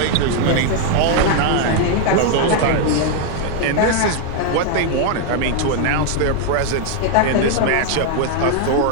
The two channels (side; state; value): both; different; correlation 0.00